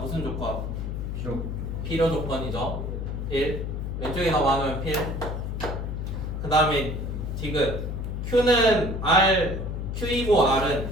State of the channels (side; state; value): left; noise; hum, 4 dB below the sound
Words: 조건? 필요 조건이죠. 1. 왼쪽이 더 많으면 필. 그 다음에 디귿. Q는 R, Q이고 R은